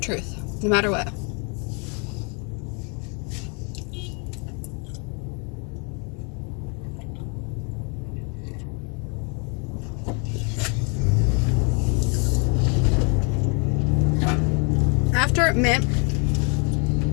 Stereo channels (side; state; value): right; quieter; 35.3 dB